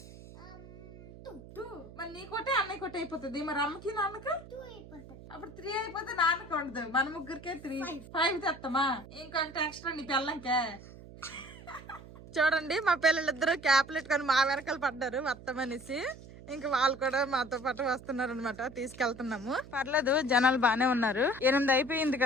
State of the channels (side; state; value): right; noise; hum, 17 dB below the sound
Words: 2. మరి నీ కొట్టే అన్నయ్య కొట్టే అయిపోతుంది. మరి అమ్మకి నాన్నకి 2 అయిపోతుంది. అప్పుడు 3 అయిపోతే నాన్నకి ఉండదు. మన ముగ్గురికే 3 5 తెస్తామా? ఇంకొకటి ఎక్స్ట్రా నీ పిల్లలకే. చూడండి, మా పిల్లలిద్దరూ క్యాప్లు పెట్టుకొని మా వెనకాల పడ్డారు వస్తామనేసి. ఇంకా వాళ్ళు కూడా మాతో పాటు వస్తున్నారు అనమాట. తీసుకెళ్తున్నాము. పర్లేదు, జనాలు బానే ఉన్నారు. 8 అయిపోయింది